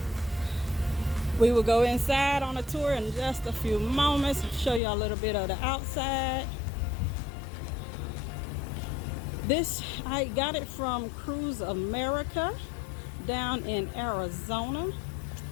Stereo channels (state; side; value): drops out; right; at 4.8 s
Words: We will go inside on a tour in just a few moments, show you a little bit of the outside. This, I got it from Cruise America down in Arizona.